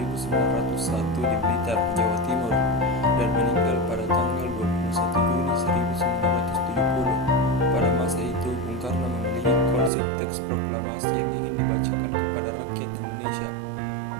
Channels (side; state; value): left; drops out; at 9.9 s